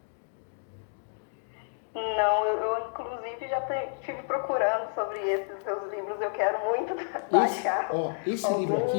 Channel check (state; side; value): silent; right; digital silence